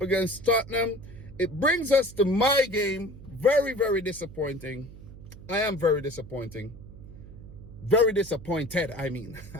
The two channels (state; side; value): noise; right; hum, 16 dB below the sound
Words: against Tottenham. It brings us to my game. Very, very disappointing. I am very disappointing. Very disappointed. I mean,